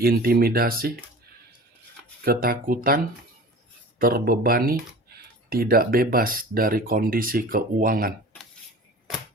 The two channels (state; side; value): normal; both; correlation 0.39